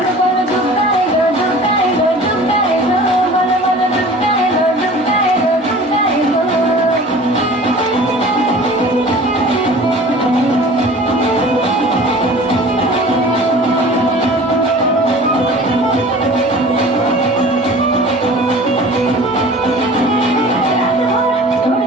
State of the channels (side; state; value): both; normal; correlation 0.43